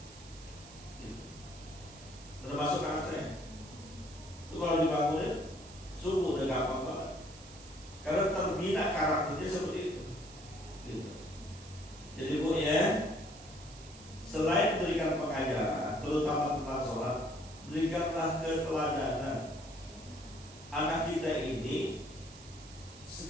termasuk anak saya. Itu kalau dibangunin subuh udah gampang banget, karena terbina karakternya seperti itu. Jadi bu ya, selain berikan pengajaran, terutama tentang sholat, berikanlah keteladanan. Anak kita ini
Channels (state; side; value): noise; right; hiss, 18 dB below the sound